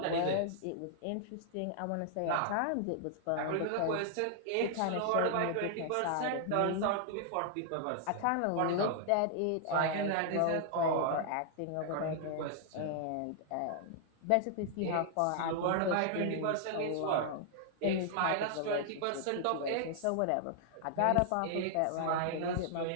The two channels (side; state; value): both; different; correlation -0.01